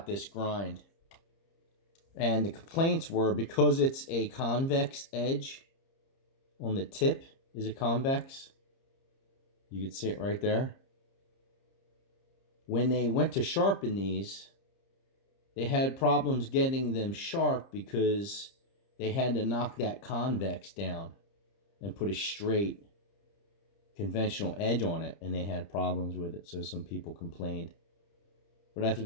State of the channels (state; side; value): late; right; 30 ms